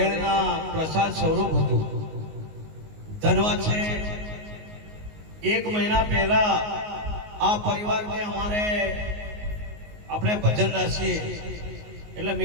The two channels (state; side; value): late; left; 19 ms